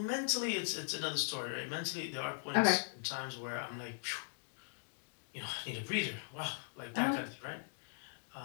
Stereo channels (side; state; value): right; silent; digital silence